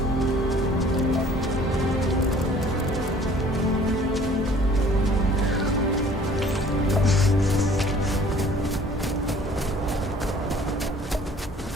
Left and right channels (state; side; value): normal; both; correlation 0.53